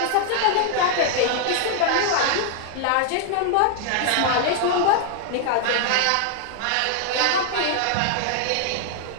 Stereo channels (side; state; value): both; different; correlation 0.00